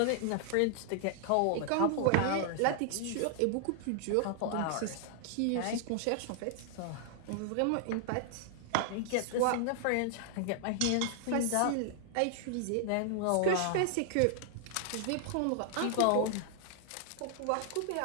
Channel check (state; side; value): different; both; correlation -0.01